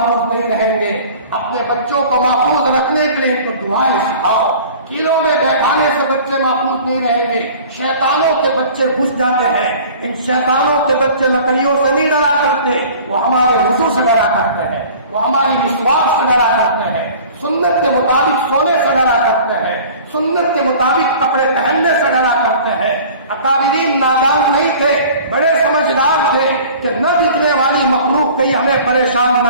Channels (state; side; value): inverted; both; correlation -0.45